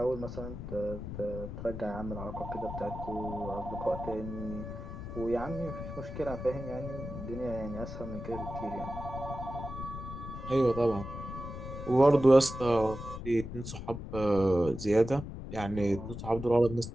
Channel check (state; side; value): noise; left; rumble, 8 dB below the sound